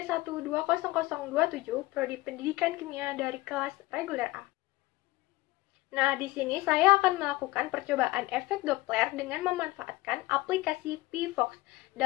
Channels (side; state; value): right; quieter; 19.8 dB